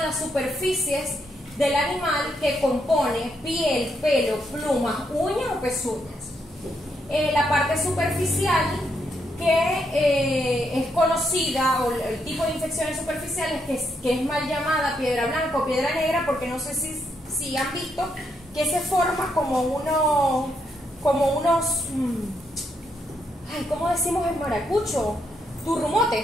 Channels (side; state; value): both; normal; correlation 0.78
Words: las superficies del animal que compone piel, pelo, plumas, uñas o pezuñas. La parte superficial, que es conocida, o el tipo de infecciones superficiales que es mal llamada piedra blanca o piedra negra, porque no sé si han visto que se forma como unos ¿cómo decimos en maracucho?